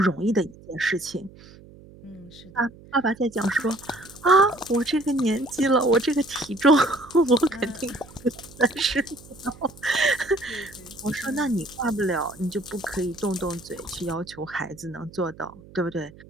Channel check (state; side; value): noise; right; hum, 21 dB below the sound